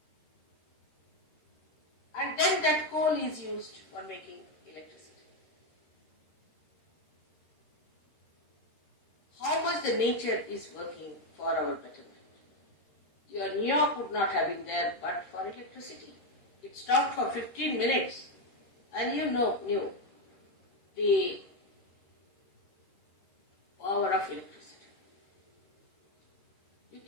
And then that coal is used for making electricity. How much the nature is working for our betterment. Your New York would not have been there but for electricity. It stopped for 15 minutes and you knew the power of electricity. You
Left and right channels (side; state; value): right; late; 13 ms